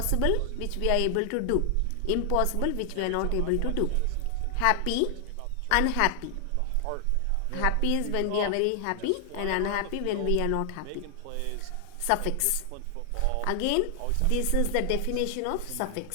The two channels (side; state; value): both; different; correlation 0.00